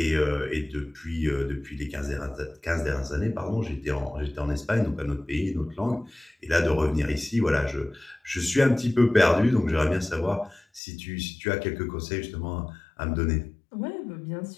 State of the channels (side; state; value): right; drops out; at 10.8 s